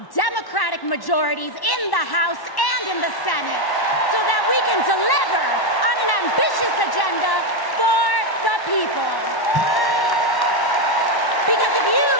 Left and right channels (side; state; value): right; late; 1.1 ms